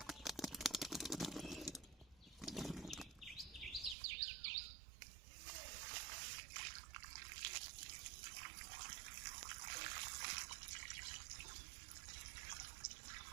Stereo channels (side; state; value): left; drops out; at 4.0 s